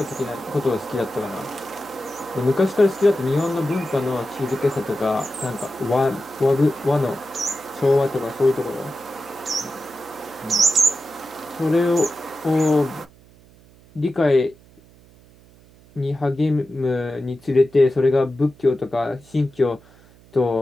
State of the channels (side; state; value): right; noise; hum, 26 dB below the sound